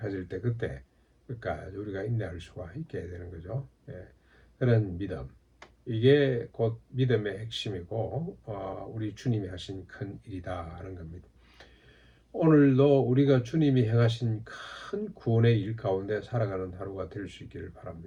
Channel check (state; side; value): identical; both; correlation 1.00